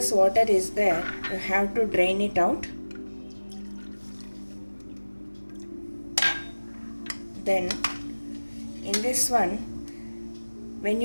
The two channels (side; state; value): both; inverted; correlation -1.00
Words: water is there, you have to drain it out. Then in this one, when